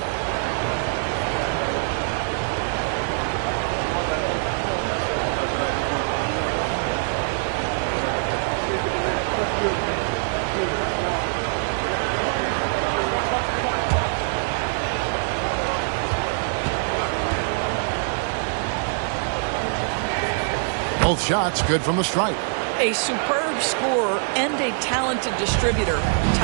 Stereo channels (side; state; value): left; silent; digital silence